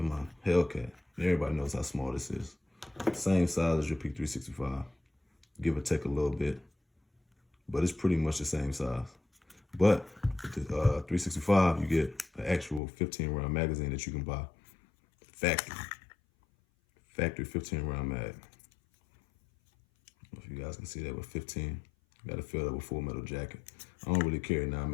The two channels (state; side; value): drops out; right; at 12.8 s